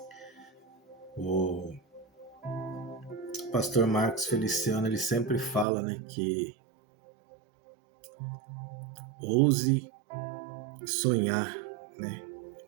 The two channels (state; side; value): drops out; left; at 5.7 s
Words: O pastor Marcos Feliciano, ele sempre fala, né, que ouse sonhar, né?